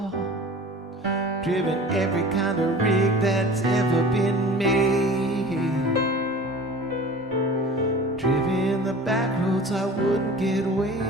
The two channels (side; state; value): both; normal; correlation 0.40